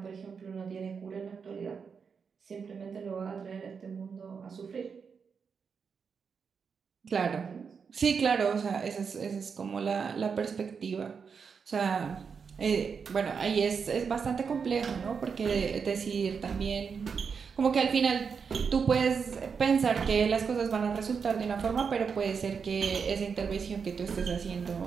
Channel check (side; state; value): left; quieter; 6.0 dB